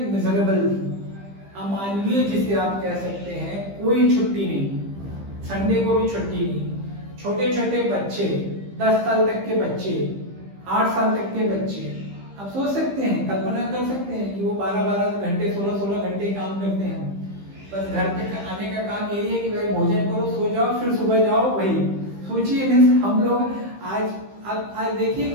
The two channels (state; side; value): late; left; 15 ms